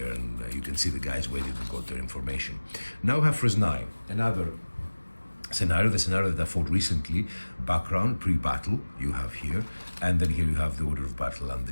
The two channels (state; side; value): inverted; both; correlation -1.00